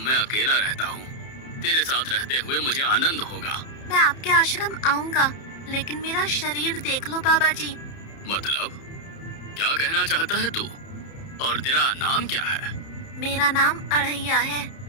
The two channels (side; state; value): right; late; 30 ms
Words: अकेला रहता हूँ, तेरे साथ रहते हुए मुझे आनंद होगा। मैं आपके आश्रम आऊंगा, लेकिन मेरा शरीर देख लो बाबा जी। मतलब क्या कहना चाहता है तू? और तेरा नाम क्या है? मेरा नाम अढ़ैया है।